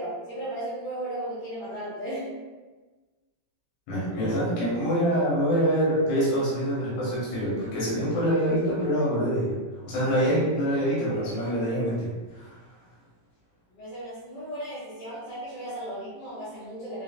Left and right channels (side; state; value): right; late; 17 ms